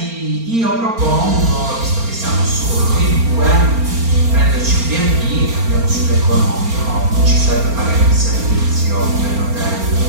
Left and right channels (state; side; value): late; left; 4.4 ms